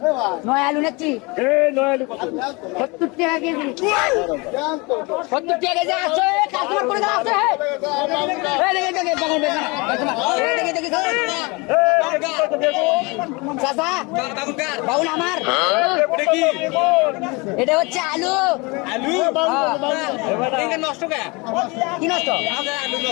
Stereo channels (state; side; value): quieter; right; 27.0 dB